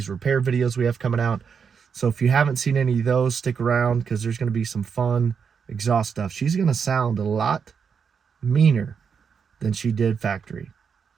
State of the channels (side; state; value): left; quieter; 6.4 dB